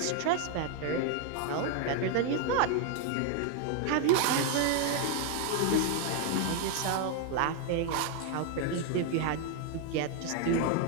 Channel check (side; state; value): both; different; correlation 0.00